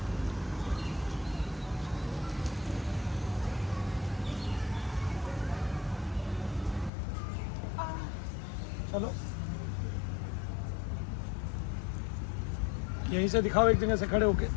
चलो यहीं से दिखाओ, एक जगह से खड़े होके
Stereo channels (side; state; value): right; drops out; at 6.9 s